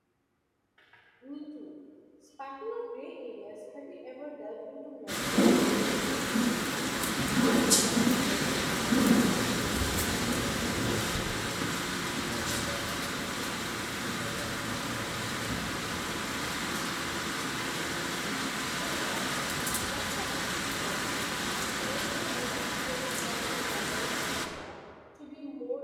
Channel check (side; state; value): both; identical; correlation 1.00